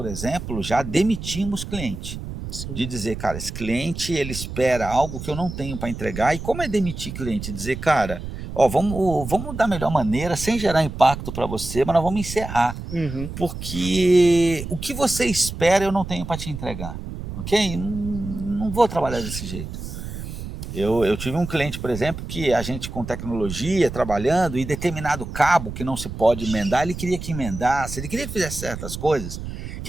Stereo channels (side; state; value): right; noise; rumble, 8 dB below the sound